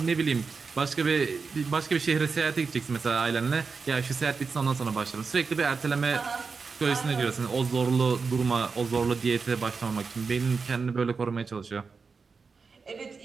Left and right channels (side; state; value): left; quieter; 4.9 dB